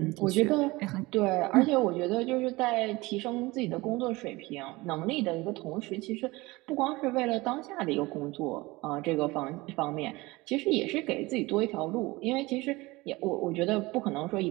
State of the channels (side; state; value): left; quieter; 21.7 dB